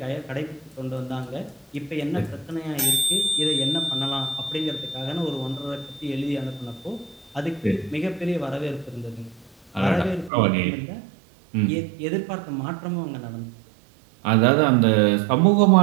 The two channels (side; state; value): left; drops out; at 10.3 s